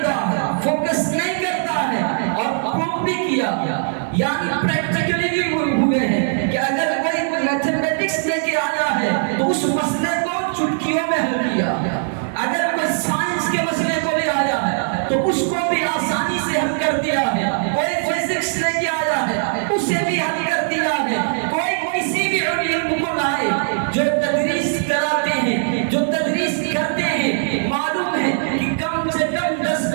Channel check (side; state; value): left; silent; digital silence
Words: ہے، فوکس نہیں کرتا ہے، اور پروف بھی کیا، یعنی پریکٹیکلی بھی ہوئے ہیں کہ اگر کوئی میتھمیٹکس لے کے آیا ہے تو اس مسئلے کو چٹکیوں میں حل کیا، اگر کوئی سائنس کے مسئلے کو لے آیا ہے تو اس کو بھی آسانی سے حل کر دیا ہے، کوئی فزکس لے کے آیا ہے اسے بھی حل کر دیا ہے، کوئی کسی بھی علم کو لائے جو تدریس کراتے ہیں، جو تدریس کرتے ہیں، معلوم ہے کہ کم سے کم 10